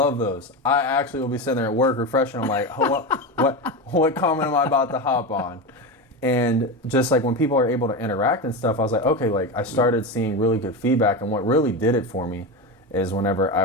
those. I actually will be sitting there at work refreshing. I'm like, what comment am I about to hop on? And just like when people are able to interact and stuff, I was like, okay, like I started seeing really good feedback. And what really did it for me is whenever I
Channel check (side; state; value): both; normal; correlation 0.19